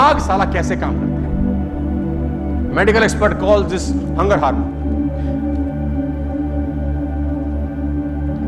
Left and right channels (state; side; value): identical; both; correlation 1.00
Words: साला कैसे काम करता है। Medical expert call this hunger hormone.